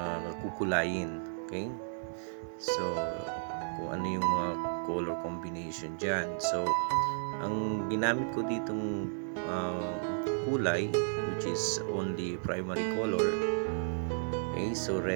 kukulayin. Okay, so kung ano yung mga color combination dyan. So ang ginamit ko ditong kulay, which is only primary color. Okay, so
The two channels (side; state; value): left; silent; 56 dB below the other